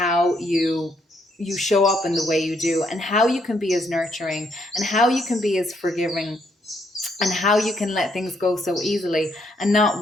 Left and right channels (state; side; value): normal; both; correlation 0.73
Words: you show up in the way you do, and how you can be as nurturing, and how you can be as forgiving, and how you can let things go so easily and not